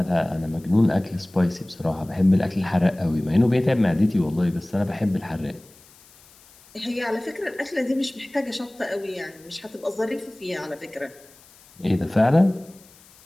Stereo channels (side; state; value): left; noise; hiss, 26 dB below the sound